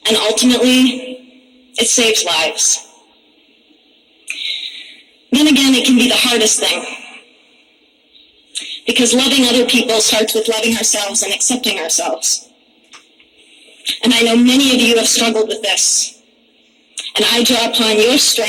And ultimately, it saves lives. Then again, it can be the hardest thing. Because loving other people starts with loving ourselves and accepting ourselves. And I know many of you have struggled with this. And I draw upon your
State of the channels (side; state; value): both; identical; correlation 1.00